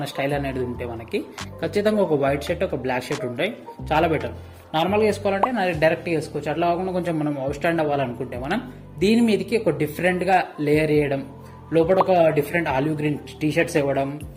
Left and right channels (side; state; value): both; identical; correlation 1.00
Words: స్టైల్ అనేది ఉంటే మనకి ఖచ్చితంగా ఒక వైట్ షర్ట్, ఒక బ్లాక్ షర్ట్ ఉంటాయి, చాలా బెటర్. నార్మల్గా వేసుకోవాలంటే డైరెక్ట్గా వేసుకోవచ్చు. అట్లా కాకుండా కొంచెం మనం అవుట్ స్టాండ్ అవ్వాలనుకుంటే మనం దీని మీదకి ఒక డిఫరెంట్గా లేయర్ చేయడం, లోపల ఒక different olive green T shirts ఇవ్వడం,